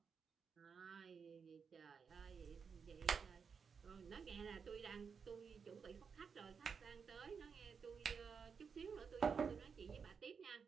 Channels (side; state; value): left; quieter; 6.0 dB